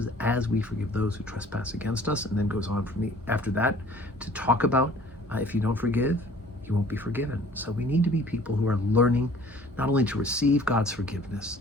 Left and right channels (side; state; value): both; normal; correlation 0.52